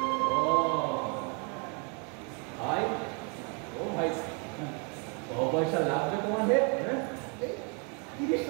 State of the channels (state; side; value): quieter; left; 36.2 dB